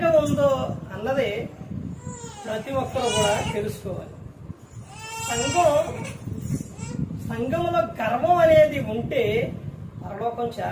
ఉందో అన్నది ప్రతి ఒక్కరు కూడా తెలుసుకోవాలి. సంఘంలో గర్వం అనేది ఉంటే పరలోకం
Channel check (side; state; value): both; identical; correlation 1.00